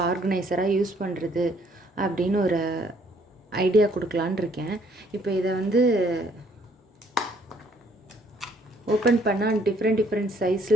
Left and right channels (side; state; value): both; normal; correlation 0.64